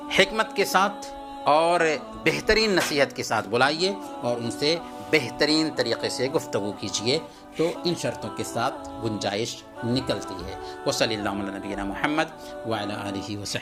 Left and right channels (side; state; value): both; identical; correlation 1.00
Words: حکمت کے ساتھ اور بہترین نصیحت کے ساتھ بلائیے اور ان سے بہترین طریقے سے گفتگو کیجیے، تو ان شرطوں کے ساتھ گنجائش نکلتی ہے۔ وصلی اللہ علی نبینا محمد وعلی آلہ